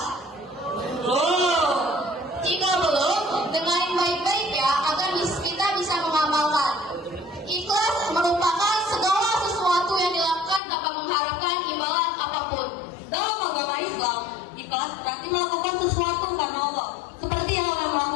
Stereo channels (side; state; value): right; drops out; at 10.6 s